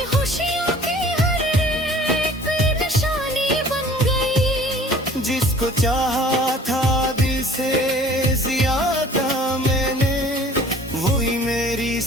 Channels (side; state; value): both; normal; correlation 0.51